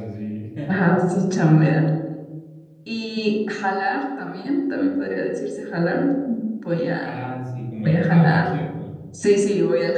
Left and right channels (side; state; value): both; identical; correlation 1.00